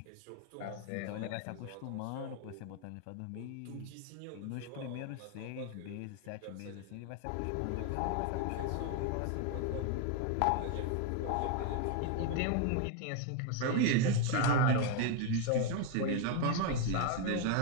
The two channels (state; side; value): different; both; correlation 0.00